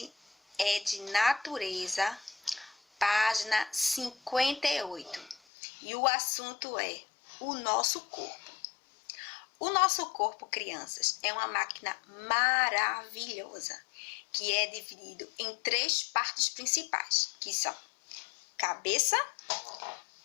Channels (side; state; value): right; drops out; at 5.4 s